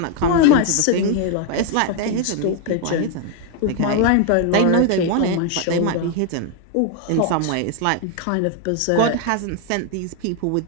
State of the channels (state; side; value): different; both; correlation 0.00